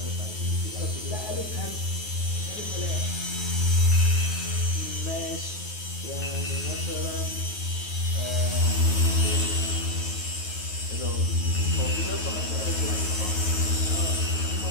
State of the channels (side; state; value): right; late; 9.3 ms